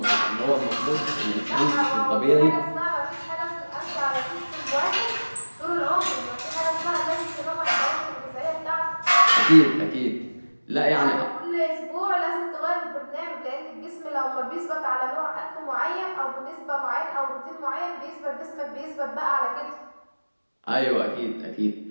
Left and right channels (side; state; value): both; inverted; correlation -1.00